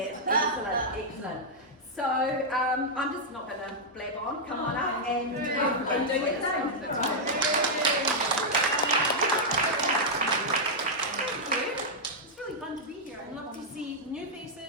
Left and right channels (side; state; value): both; normal; correlation -0.05